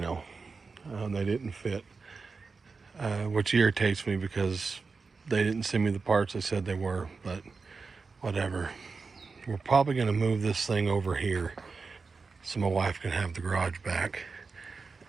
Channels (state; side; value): quieter; left; 4.5 dB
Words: They didn't fit, which irritates me because they didn't send me the parts they said they were, but whatever. We're probably going to move this thing over here so my wife can have the garage back.